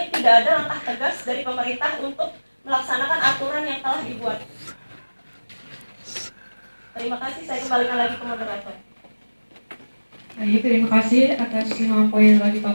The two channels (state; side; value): inverted; both; correlation -1.00